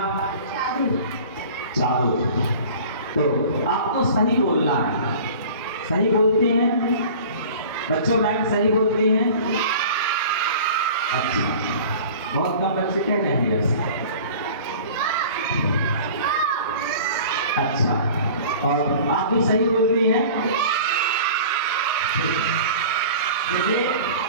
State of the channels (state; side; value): inverted; both; correlation -0.42